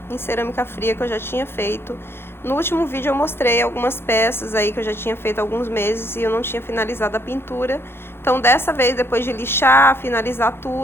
em cerâmica fria que eu já tinha feito. No último vídeo eu mostrei algumas peças aí que eu já tinha feito há alguns meses e eu não tinha finalizado a pintura. Então dessa vez, depois de lixar, finalizar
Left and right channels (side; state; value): right; late; 0.11 ms